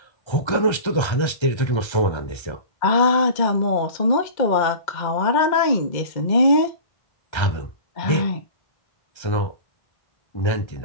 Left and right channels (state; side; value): late; right; 1.3 ms